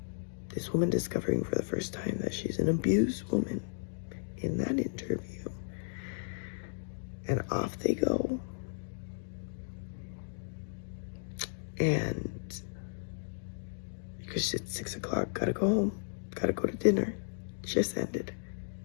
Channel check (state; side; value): silent; right; digital silence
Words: This woman discovering for the first time that she's an abused woman in that interview. And off they go. And because it's 6 o'clock, gotta go home, gotta go to dinner. Just ended.